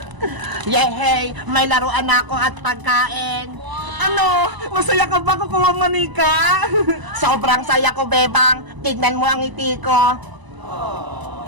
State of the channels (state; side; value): late; left; 1.0 ms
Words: Yehey, may laruan ako at pagkain. Ano? Masaya ka ba, Kukawa Manika? Sobrang saya ko, Bebang. Tignan mo ang ngiti ko.